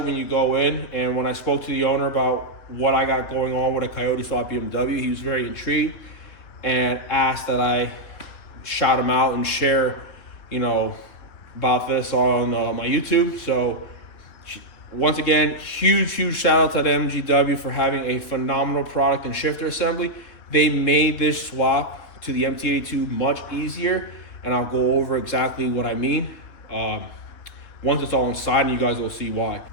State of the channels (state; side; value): late; right; 3.6 ms